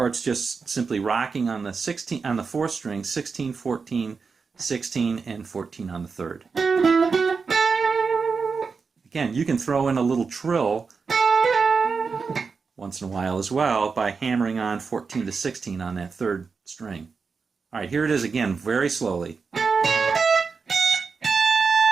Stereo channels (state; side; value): quieter; left; 5.0 dB